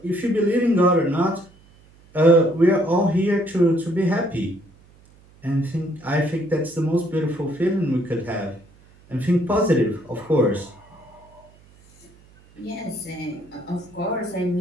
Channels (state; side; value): noise; right; hum, 27 dB below the sound